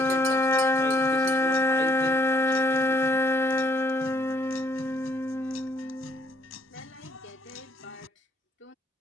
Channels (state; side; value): normal; both; correlation 0.67